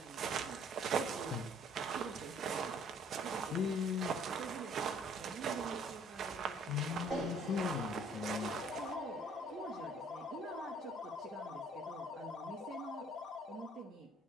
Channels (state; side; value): normal; both; correlation 0.58